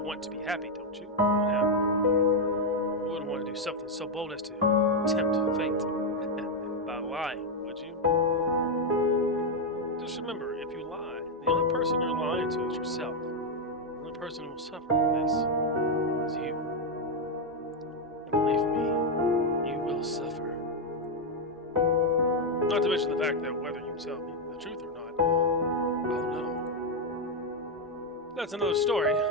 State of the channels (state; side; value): normal; both; correlation 0.03